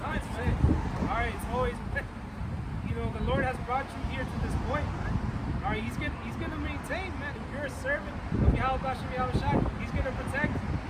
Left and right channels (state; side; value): identical; both; correlation 1.00